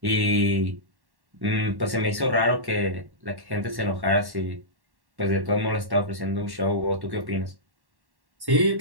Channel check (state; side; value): late; left; 1.1 ms